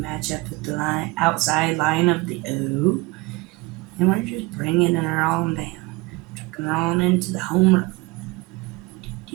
up with the outside line of the O, and we're just bringing her on down, trucking her on into the home run.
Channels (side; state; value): left; quieter; 23.5 dB